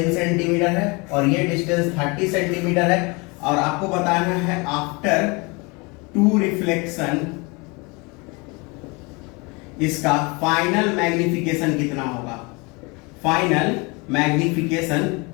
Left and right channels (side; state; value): right; quieter; 28.1 dB